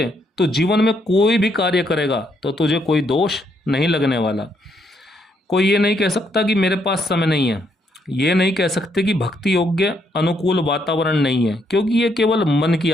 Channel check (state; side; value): normal; both; correlation 0.74